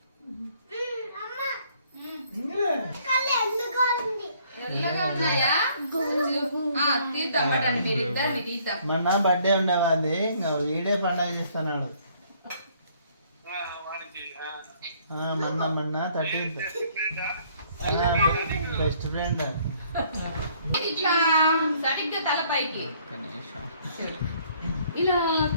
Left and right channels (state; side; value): inverted; both; correlation -0.63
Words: తెల్లగా ఉన్నాయా తీద్దాం పడండి మీరు ఇద్దరిని తీద్దాం. మొన్న బర్త్డే ఉండేవాది ఇంకా వీడే పండగ చేస్తున్నాడు. మొన్న 13th బెస్ట్ ఫ్రెండ్. ఇట్లా సరిగ్గా తలపైకి ఇలా